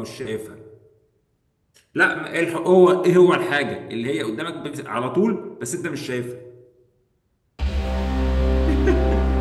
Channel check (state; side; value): identical; both; correlation 1.00